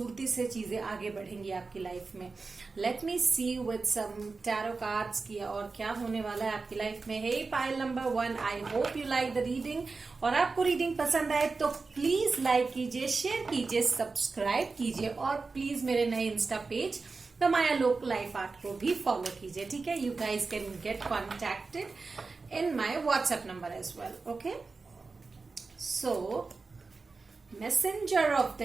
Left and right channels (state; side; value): quieter; left; 4.1 dB